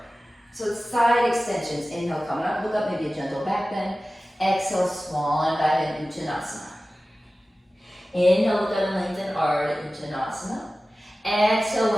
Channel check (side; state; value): both; normal; correlation 0.96